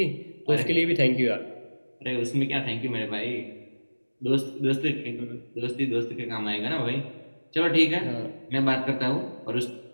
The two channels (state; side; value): inverted; both; correlation -1.00